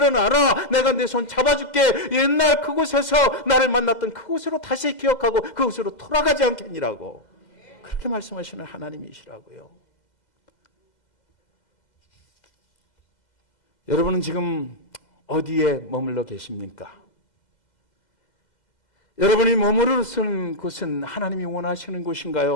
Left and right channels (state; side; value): late; right; 2.0 ms